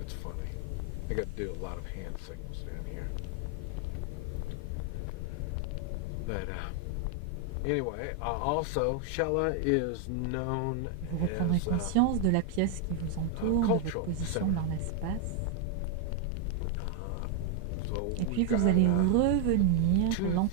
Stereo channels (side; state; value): both; different; correlation 0.01